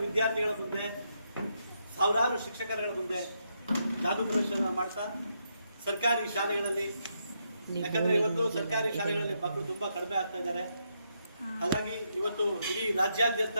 ವಿದ್ಯಾರ್ಥಿಗಳ ಮುಂದೆ, ಸಾವಿರಾರು ಶಿಕ್ಷಕರುಗಳ ಮುಂದೆ ಜಾದೂ ಪ್ರದರ್ಶನ ಮಾಡ್ತಾ ಸರ್ಕಾರಿ ಶಾಲೆಗಳಲ್ಲಿ, ಯಾಕಂದ್ರೆ ಇವತ್ತು ಸರ್ಕಾರಿ ಶಾಲೆಗಳಲ್ಲಿ ಮಕ್ಕಳು ತುಂಬಾ ಕಡಿಮೆ ಆಗ್ತಾ ಇದ್ದಾರೆ. ಹಾಗಾಗಿ ಇವತ್ತು ಇಡೀ ರಾಜ್ಯಾದ್ಯಂತ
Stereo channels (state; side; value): inverted; both; correlation -0.79